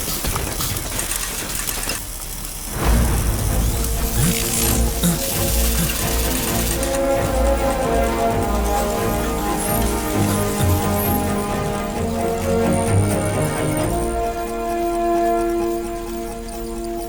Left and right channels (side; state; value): both; identical; correlation 1.00